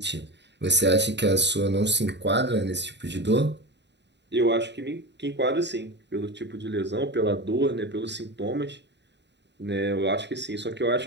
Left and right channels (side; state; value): left; late; 0.51 ms